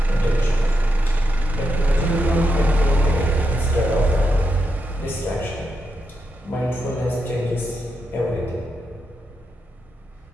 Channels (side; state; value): both; normal; correlation 0.84